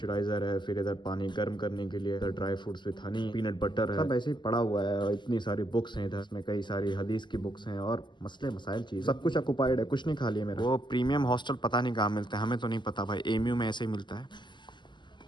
है, फिर इधर पानी गर्म करने के लिए, इधर dry fruits with Honey, peanut butter है, सब ऐसे ही पड़ा हुआ है। और इतनी सारी बुक्स हैं इधर, इसमें कई सारी हदीस की बुक्स हैं और मसले मसाइल चीज, सब कुछ ऑक्युपाइड है, कुछ नहीं खाली है मेरा। वो प्रीमियम हॉस्टल पता नहीं कहाँ मिलता है, हमें तो नहीं पता भाई, एमयू में ऐसे ही मिलता है।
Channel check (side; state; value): right; late; 0.22 ms